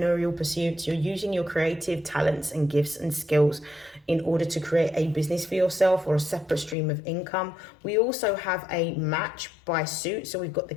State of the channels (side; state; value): right; drops out; at 6.8 s